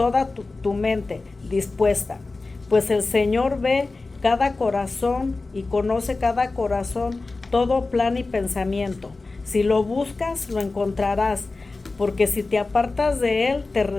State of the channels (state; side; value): quieter; right; 3.5 dB